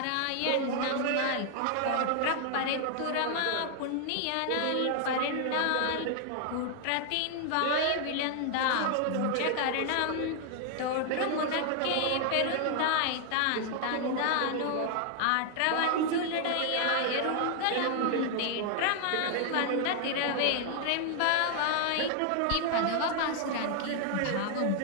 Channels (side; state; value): both; different; correlation 0.00